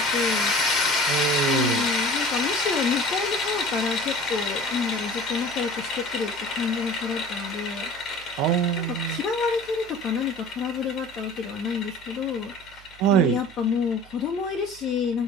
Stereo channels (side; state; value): right; noise; hum, 23 dB below the sound